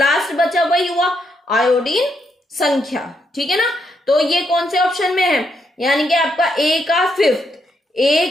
बचा वही हुआ आयोडीन संख्या। ठीक है ना, तो ये कौन से ऑप्शन में है, यानी कि आपका ए का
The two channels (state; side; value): normal; both; correlation 0.78